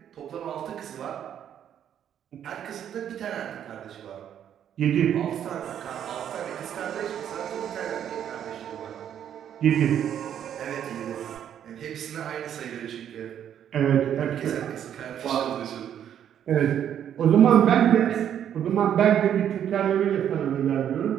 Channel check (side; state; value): left; quieter; 9.7 dB